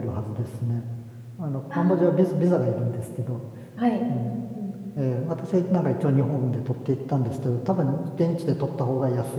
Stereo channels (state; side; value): identical; both; correlation 1.00